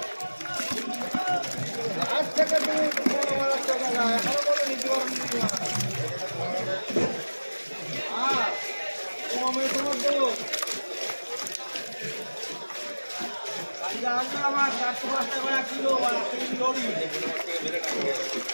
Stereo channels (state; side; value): inverted; both; correlation -1.00